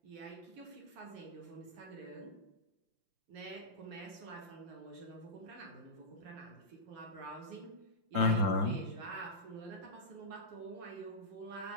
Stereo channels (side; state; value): left; late; 5.8 ms